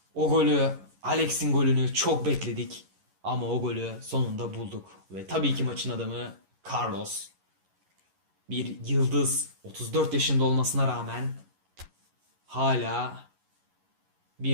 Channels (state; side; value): late; left; 11 ms